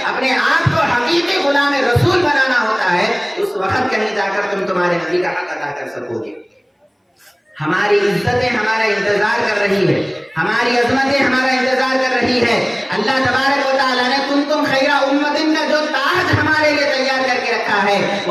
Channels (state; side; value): identical; both; correlation 1.00